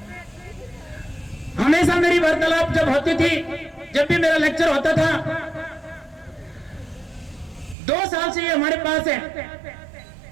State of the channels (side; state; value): left; drops out; at 7.8 s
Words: हमेशा मेरी वार्तालाप जब होती थी, जब भी मेरा लेक्चर होता था, 2 साल से ये हमारे पास है।